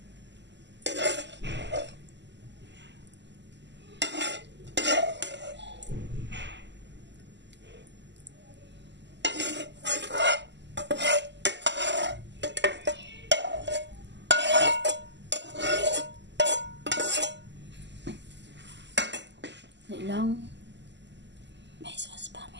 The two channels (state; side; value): late; left; 0.51 ms